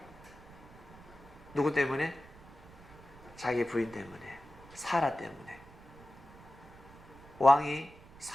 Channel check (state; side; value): noise; right; rumble, 20 dB below the sound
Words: 누구 때문에? 자기 부인 때문에, 사라 때문에. 왕이